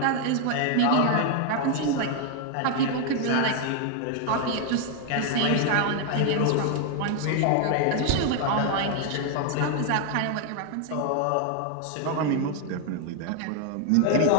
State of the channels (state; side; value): different; both; correlation 0.00